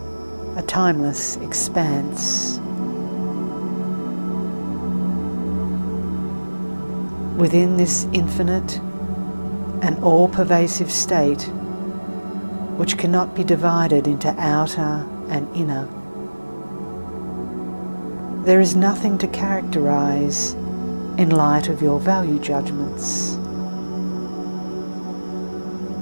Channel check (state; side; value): inverted; both; correlation -1.00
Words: a timeless expanse. Within this infinite and all-pervasive state, which cannot be divided into outer and inner, there is nothing to characterize in light of your value judgments.